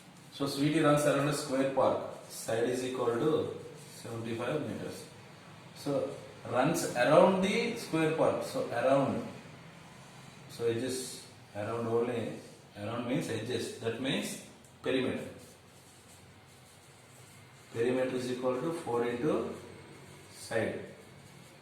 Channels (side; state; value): both; identical; correlation 1.00